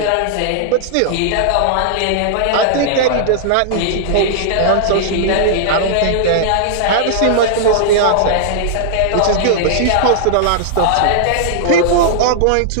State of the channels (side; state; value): both; different; correlation -0.01